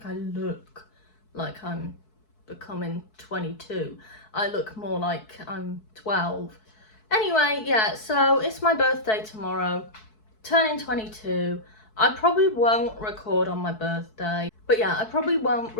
I look like I'm becoming 22. I look more like I'm 12. Anyway, yeah, so it's my birthday tomorrow, turning 22. I probably won't record on my birthday. But yeah, I probably won't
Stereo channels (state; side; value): late; right; 4.6 ms